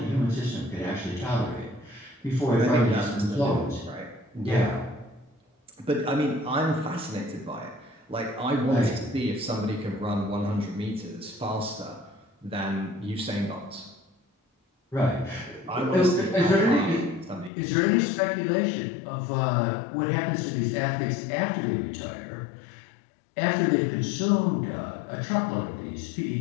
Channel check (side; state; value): right; drops out; at 17.5 s